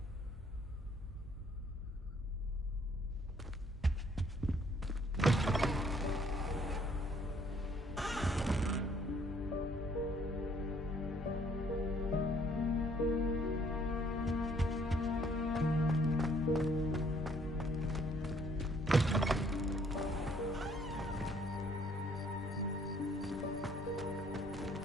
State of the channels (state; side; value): normal; both; correlation 0.63